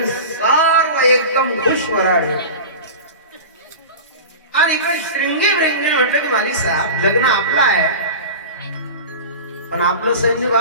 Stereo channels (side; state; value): both; inverted; correlation -0.31